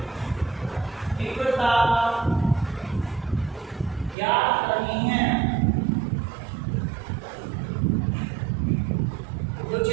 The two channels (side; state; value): left; drops out; at 4.2 s